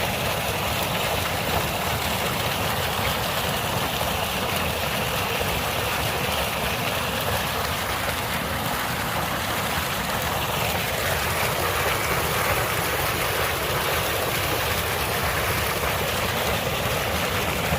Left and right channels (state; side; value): identical; both; correlation 1.00